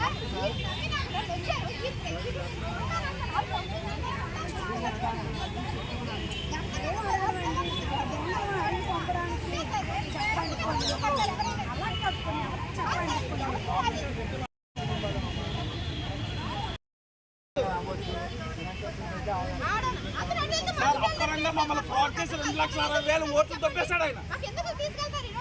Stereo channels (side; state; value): both; identical; correlation 1.00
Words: అప్పరంగా మమ్మల్ని ఫ్రాడ్ చేసి 2,60,000 ఓట్లు తప్పేశాడు ఆయన.